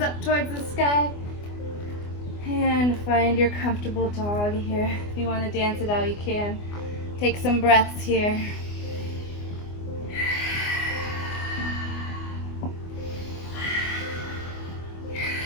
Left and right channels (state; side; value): late; right; 24 ms